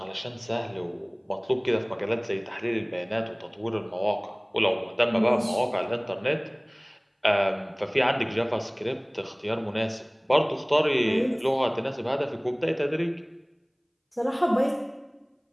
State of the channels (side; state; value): both; identical; correlation 1.00